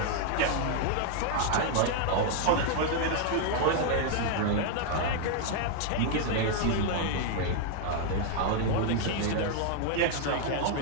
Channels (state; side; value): different; both; correlation 0.00